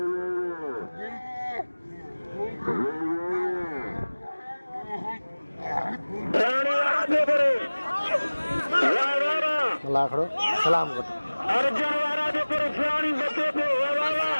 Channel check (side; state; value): both; inverted; correlation -1.00